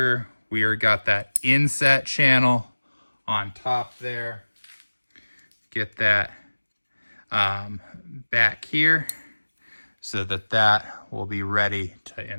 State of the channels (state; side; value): inverted; both; correlation -1.00